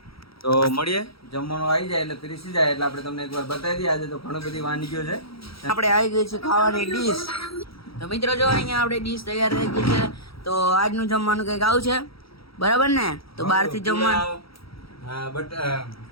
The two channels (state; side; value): late; right; 0.75 ms